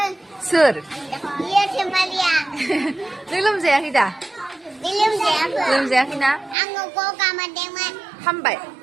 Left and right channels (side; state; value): left; drops out; at 6.6 s